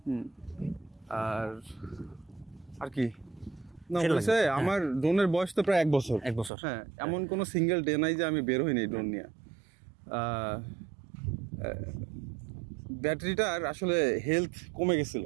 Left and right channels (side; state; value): left; drops out; at 6.5 s